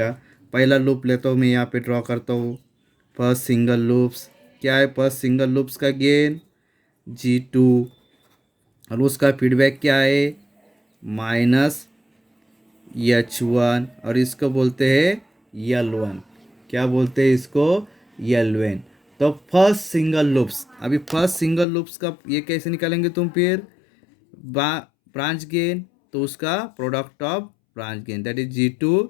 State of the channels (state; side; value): drops out; right; at 21.7 s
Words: पहला लूप लेता हूँ मैं, यहाँ पे ड्रॉ करता हूँ फर्स्ट सिंगल लूप्स। क्या है फर्स्ट सिंगल लूप्स का गेन G2, और उसका फीडबैक क्या है -H1, और इसको बोलते हैं L1। क्या बोलते हैं इसको, L1। तो फर्स्ट सिंगल लूप्स, अभी फर्स्ट सिंगल लूप्स का ये कैसे निकालेंगे तुम, फिर ब्रांच गेन, तो उसका product of branch gain that is